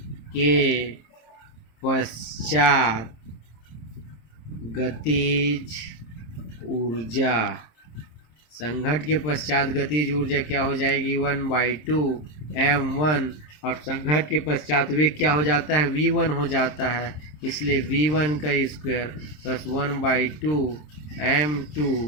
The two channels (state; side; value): late; right; 26 ms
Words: के पश्चात गतिज ऊर्जा, संघट के पश्चात गतिज ऊर्जा क्या हो जाएगी, 1/2 m1 और संघट के पश्चात वेग क्या हो जाता है, v1 हो जाता है, इसलिए v1 का स्क्वायर प्लस 1/2 m2